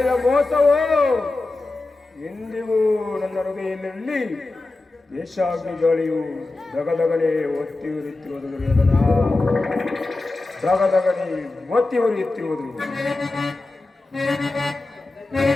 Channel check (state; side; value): quieter; right; 3.2 dB